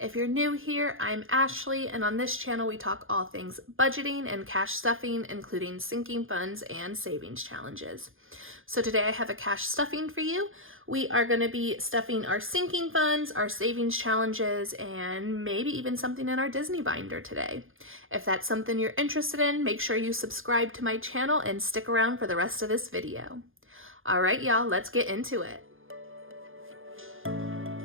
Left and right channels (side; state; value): left; late; 0.59 ms